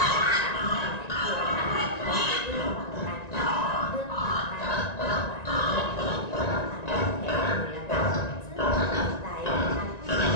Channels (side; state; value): right; late; 1.9 ms